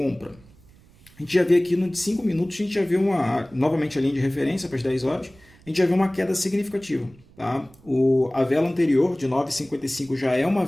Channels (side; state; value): right; noise; rumble, 27 dB below the sound